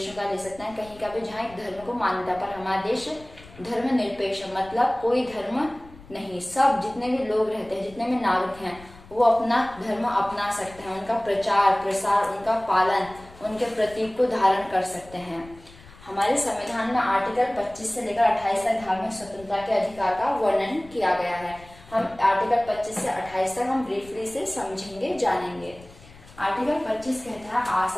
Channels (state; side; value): noise; left; rumble, 21 dB below the sound